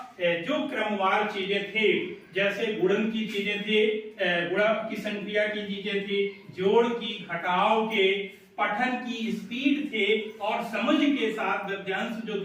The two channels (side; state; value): both; identical; correlation 1.00